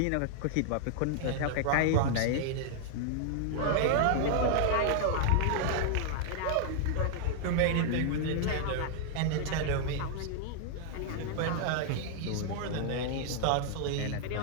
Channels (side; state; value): both; different; correlation -0.01